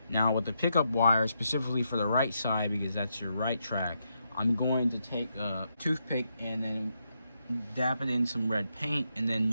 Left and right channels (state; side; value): inverted; both; correlation -0.81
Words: Now, with the pickup wires, specifically for the right side, because that's your right track, I'm going to take a toothpick and then dab it in some red paint and